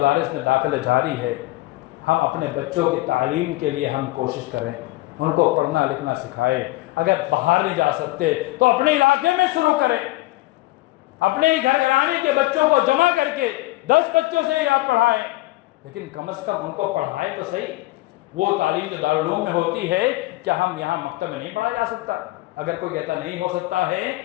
میں داخلے جاری ہے۔ ہم اپنے بچوں کی تعلیم کے لیے ہم کوشش کریں، ان کو پڑھنا لکھنا سکھائیں۔ اگر باہر نہیں جا سکتے تو اپنے علاقے میں شروع کریں، اپنے ہی گھر گھرانے کے بچوں کو جمع کر کے 10 بچوں سے یاد پڑھائیں، لیکن کم از کم ان کو پڑھائیں تو صحیح۔ وہ تعلیم جو دارالعلوم میں ہوتی ہے کیا ہم یہاں مکتب میں نہیں پڑھا جا سکتا؟ اگر کوئی کہتا نہیں ہو سکتا ہے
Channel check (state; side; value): quieter; right; 19.5 dB